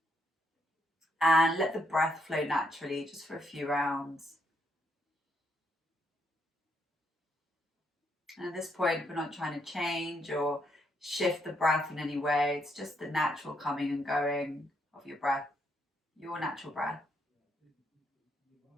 and let the breath flow naturally just for a few rounds. And at this point, we're not trying to change or shift the breath in any way. It's just the natural coming and going of your breath, your natural breath.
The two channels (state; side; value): normal; both; correlation 0.76